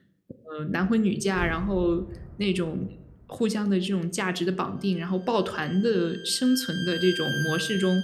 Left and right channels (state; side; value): identical; both; correlation 1.00